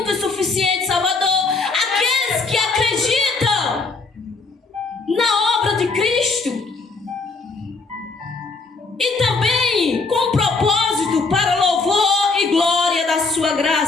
e suficiente Salvador. Aqueles que acreditam na obra de Cristo. E também com propósito para louvor e glória da sua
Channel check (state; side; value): quieter; right; 3.9 dB